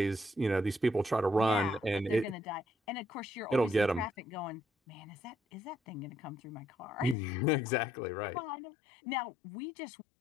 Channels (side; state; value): right; drops out; at 7.2 s